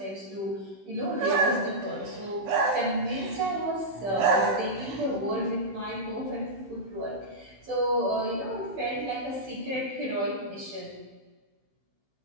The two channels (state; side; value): late; left; 15 ms